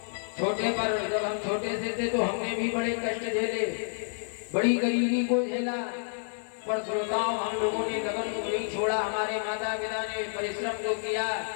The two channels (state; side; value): silent; right; digital silence